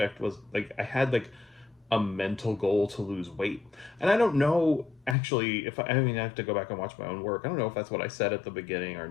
was like I had like a mental goal to lose weight. And I don't know actually if I mean, I have to go back and watch my own work. I don't know if that's what I said at the beginning or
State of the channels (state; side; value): drops out; right; at 5.2 s